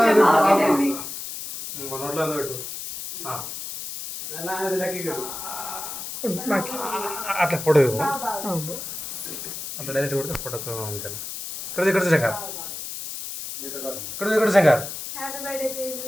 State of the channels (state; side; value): noise; left; hiss, 8 dB below the sound